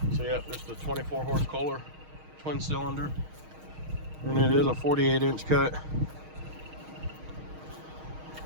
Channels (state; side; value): late; left; 6.4 ms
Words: So yeah, this is the 24 horse Kohler twin cylinder, and it is a 48-inch cut.